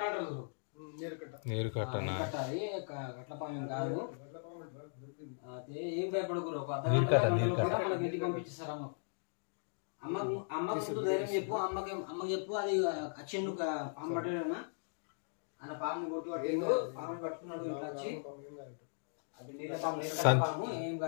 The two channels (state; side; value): silent; right; digital silence